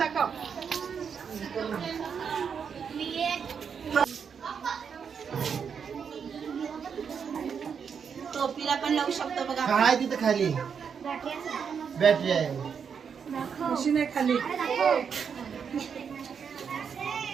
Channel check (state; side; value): quieter; left; 6.8 dB